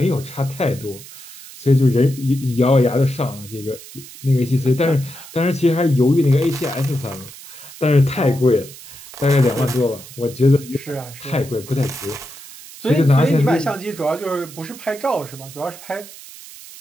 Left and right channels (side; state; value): right; noise; hiss, 17 dB below the sound